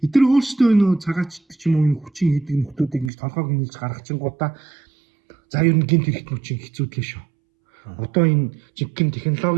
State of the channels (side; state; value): left; drops out; at 3.1 s